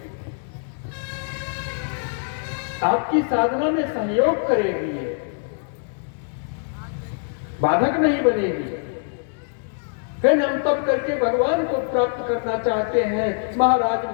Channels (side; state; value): right; silent; 63 dB below the other